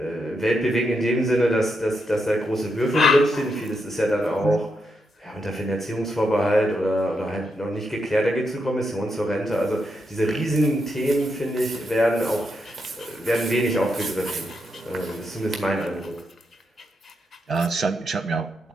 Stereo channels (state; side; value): normal; both; correlation 0.82